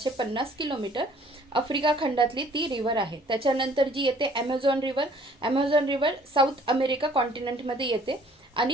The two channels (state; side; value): normal; both; correlation 0.56